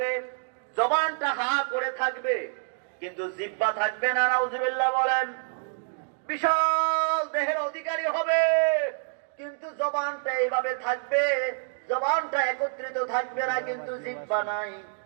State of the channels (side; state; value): left; silent; 60 dB below the other